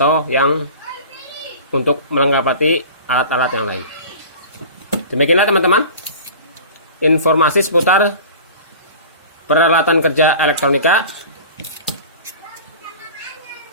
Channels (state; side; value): inverted; both; correlation -0.39